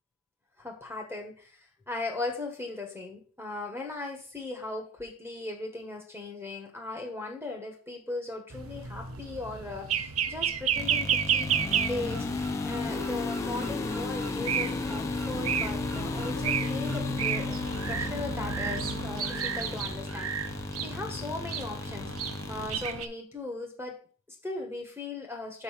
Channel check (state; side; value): normal; both; correlation 0.44